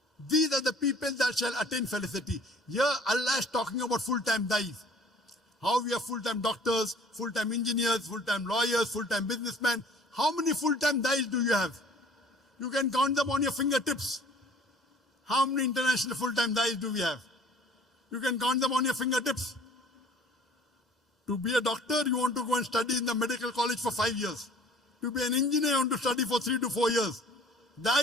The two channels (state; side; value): normal; both; correlation 0.52